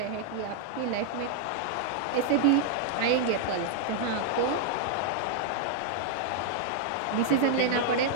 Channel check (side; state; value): both; different; correlation -0.01